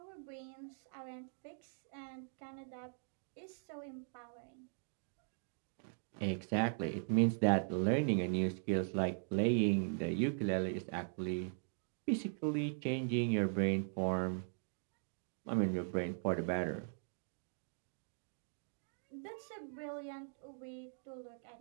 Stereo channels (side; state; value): left; silent; digital silence